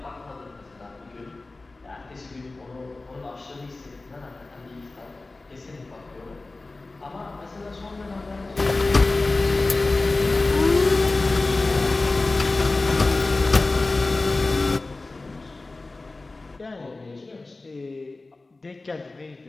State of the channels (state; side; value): quieter; right; 3.3 dB